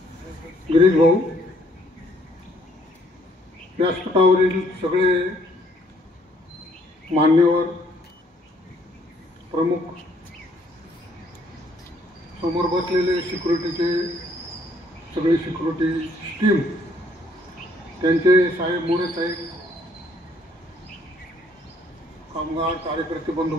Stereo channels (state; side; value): normal; both; correlation 0.65